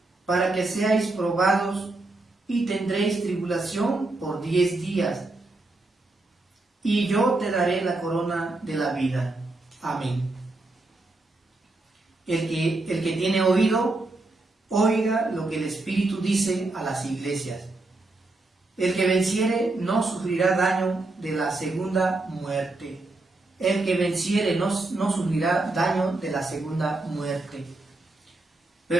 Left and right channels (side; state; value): left; quieter; 3.0 dB